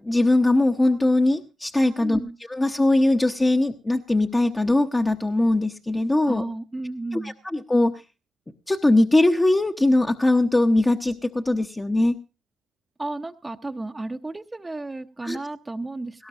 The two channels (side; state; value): both; normal; correlation 0.98